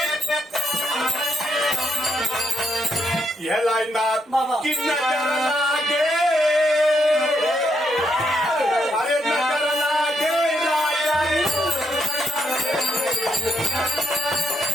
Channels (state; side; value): normal; both; correlation 0.78